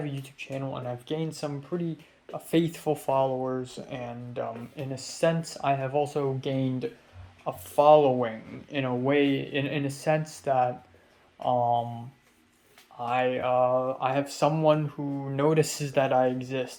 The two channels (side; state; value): both; identical; correlation 1.00